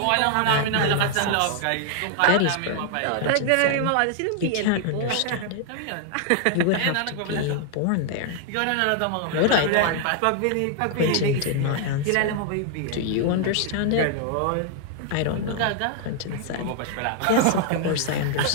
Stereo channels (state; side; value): different; both; correlation 0.00